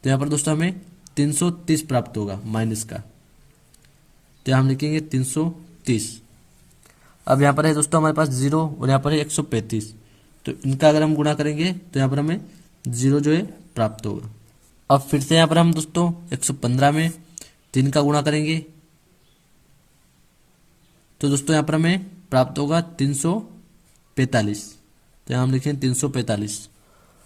तो यहाँ पर दोस्तों हमें 330 प्राप्त होगा माइनस का। तो हम लिखेंगे 330। अब यहाँ पर है दोस्तों हमारे पास 0 और यहाँ पर है 135, तो इनका अगर हम गुणा करेंगे तो यहाँ पर हमें 0 जो है प्राप्त होगा। अब फिर से यहाँ पर हम दोस्तों 115 में 3 का गुणा करेंगे, तो दोस्तों यहाँ पर हमें प्राप्त होगा 345। तो यहाँ हम लिखेंगे 345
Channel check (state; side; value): identical; both; correlation 1.00